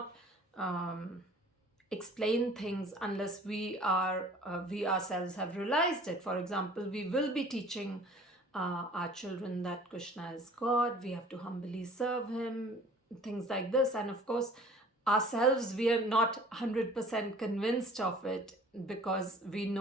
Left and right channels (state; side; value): normal; both; correlation 0.49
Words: explain things unless we ourselves have realized it. For example, we will be teaching our children that Krishna is God, we have to humbly serve him, things like this. And of course, ourselves, we are not 100% convinced of it because we